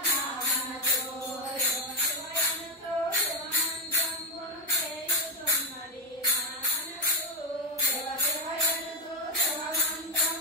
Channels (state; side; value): normal; both; correlation 0.06